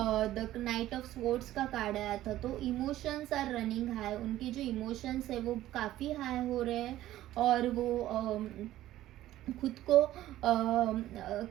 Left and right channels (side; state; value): left; quieter; 14.3 dB